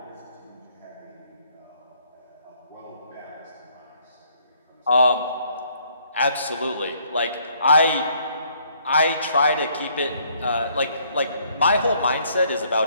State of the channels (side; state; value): both; inverted; correlation -0.66